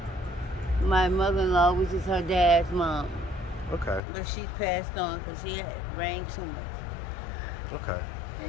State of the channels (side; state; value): right; drops out; at 4.0 s